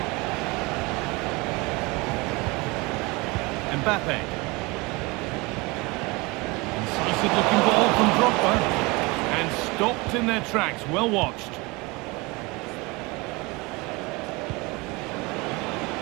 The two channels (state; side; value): quieter; left; 25.2 dB